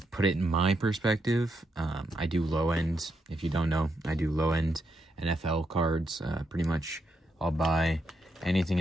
put it in my perspective. I do low end. If you don't know, I do low end NFL cards. Pretty much I'll buy anything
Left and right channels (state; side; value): normal; both; correlation 0.81